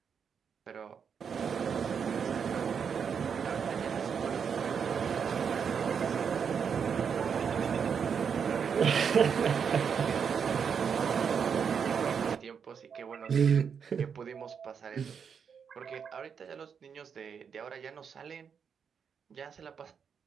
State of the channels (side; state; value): left; quieter; 6.8 dB